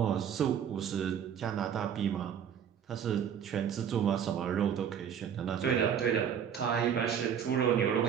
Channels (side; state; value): left; quieter; 8.3 dB